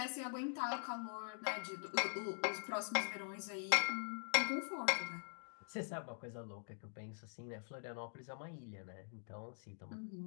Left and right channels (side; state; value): right; silent; digital silence